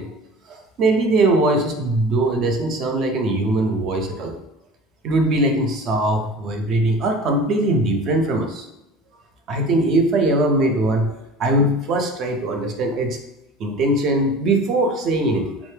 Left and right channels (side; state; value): both; normal; correlation 0.40